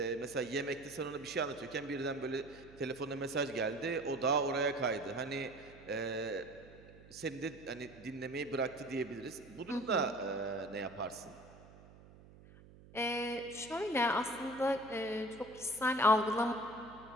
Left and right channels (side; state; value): right; noise; hum, 21 dB below the sound